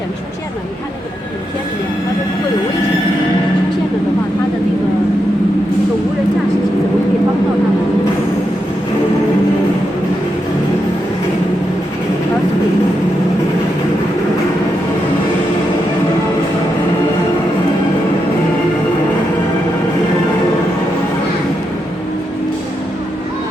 出现了，你看那个影片里面，他说如果有危险出现了的话，他的那个无人驾驶机怎么可以帮到他们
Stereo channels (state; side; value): normal; both; correlation 0.84